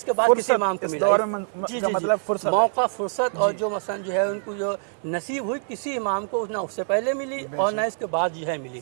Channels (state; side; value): silent; left; digital silence